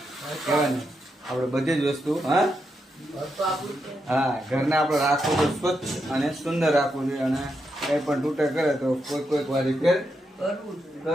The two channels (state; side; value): normal; both; correlation 0.83